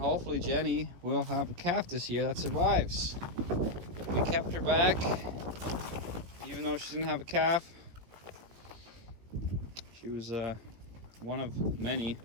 Jenny will have a calf this year that survives. We kept her back, even though she didn't have a calf. She was one of many.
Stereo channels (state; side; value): late; left; 17 ms